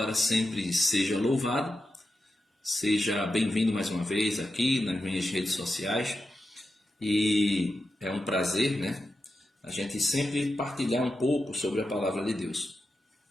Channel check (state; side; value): normal; both; correlation 0.89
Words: sempre seja louvado. Seja bem-vindo mais uma vez aqui nas minhas redes sociais. E é um prazer, a gente sempre partilhar um pouco sobre a palavra de Deus.